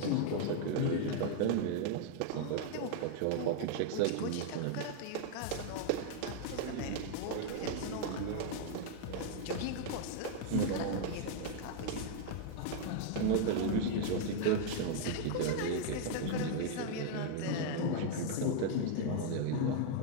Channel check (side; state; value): both; different; correlation 0.00